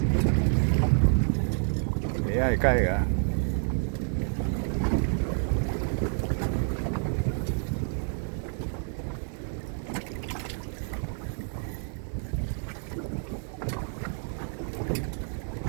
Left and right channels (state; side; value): silent; left; 59 dB below the other